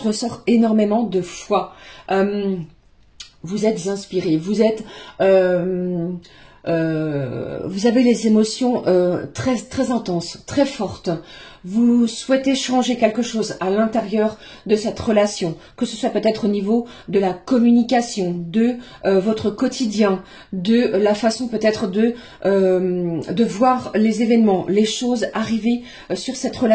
ressort énormément de foi. Vous êtes inspiré. Vous avez les émotions très, très intenses, très fortes. Vous souhaitez changer quelque chose à l'intérieur de cette relation, que ce soit peut-être au niveau de la communication, de votre quotidien, de la façon peut-être de voir les événements, les choses arriver sur cette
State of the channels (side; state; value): both; identical; correlation 1.00